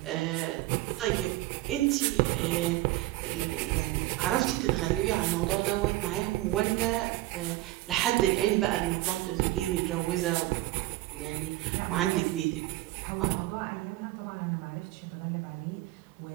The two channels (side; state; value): left; quieter; 17.8 dB